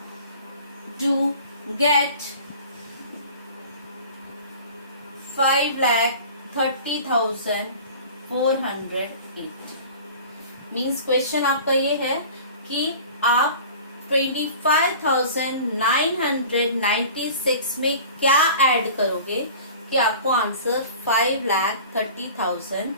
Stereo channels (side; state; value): both; inverted; correlation -0.42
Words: to get 5,30,408। Means question आपका ये है कि आप 25,996 में क्या ऐड करोगे कि आपको आंसर